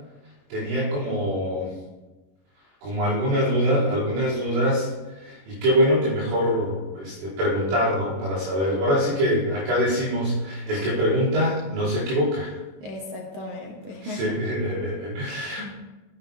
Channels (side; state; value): left; late; 21 ms